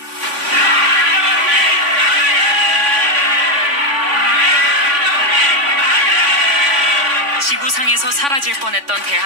지구상에서 사라질 뻔했던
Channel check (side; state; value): left; late; 3.5 ms